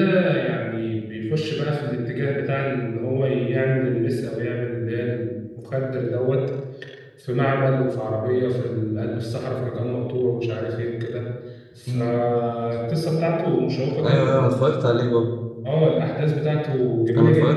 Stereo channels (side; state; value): both; identical; correlation 1.00